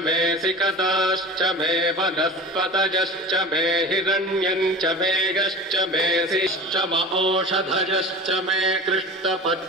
मे सिकताश्च मे वनस्पतयश्च मे हिरण्यम् च मेघश्च मे सिश्च औषधयश्च मे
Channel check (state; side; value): normal; both; correlation 0.34